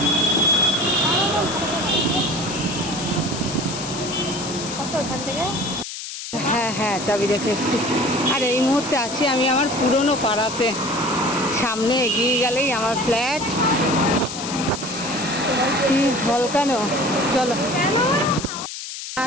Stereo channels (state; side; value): noise; left; hiss, 9 dB below the sound